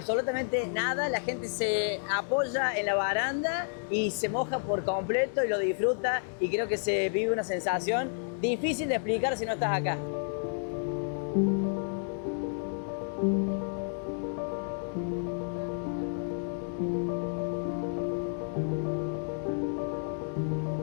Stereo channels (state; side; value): silent; right; 57 dB below the other